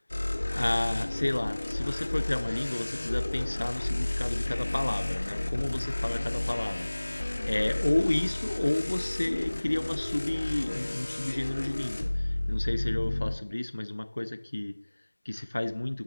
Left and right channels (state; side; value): inverted; both; correlation -1.00